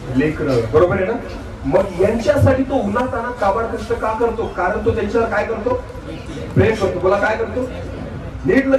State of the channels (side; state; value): both; identical; correlation 1.00